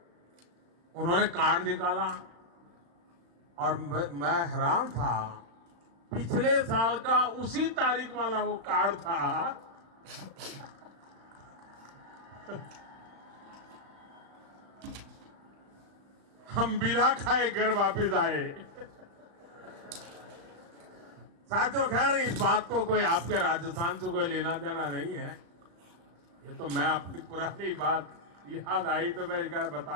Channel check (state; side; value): late; left; 35 ms